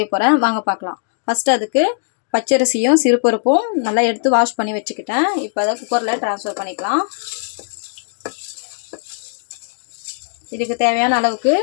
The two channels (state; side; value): silent; right; digital silence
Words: போகிறேன். வாங்க பார்க்கலாம். ஃபஸ்ட்டு அதுக்கு பச்சரிசியும் சிறுபருப்பும் நல்லா எடுத்து வாஷ் பண்ணி வச்சுக்கிட்டேன். இப்போ அதை குக்கரில் ட்ரான்ஸ்ஃபர் பண்ணிக்கலாம். இதுக்கு தேவையான அளவுக்கு